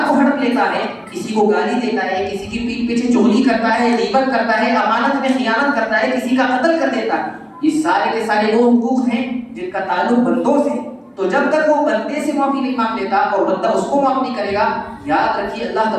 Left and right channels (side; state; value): both; identical; correlation 1.00